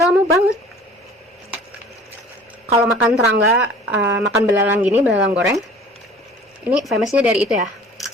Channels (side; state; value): both; normal; correlation 0.46